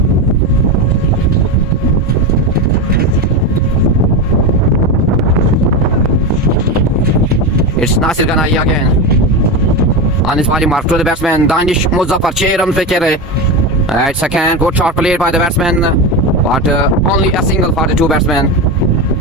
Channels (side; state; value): both; normal; correlation 0.17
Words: It's Nasir Ghanai again on his body mark to the batsman Danish Muzaffar. 6 runs पे खेल रहे. It's again good shot played by the batsman but only a single for the 2 batsmen.